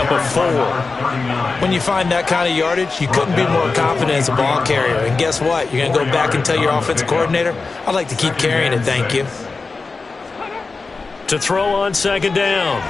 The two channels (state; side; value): quieter; right; 4.1 dB